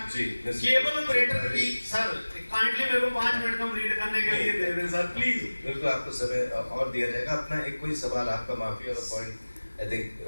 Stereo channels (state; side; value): inverted; both; correlation -1.00